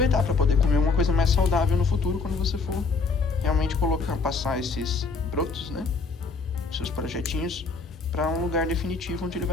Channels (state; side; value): quieter; right; 4.3 dB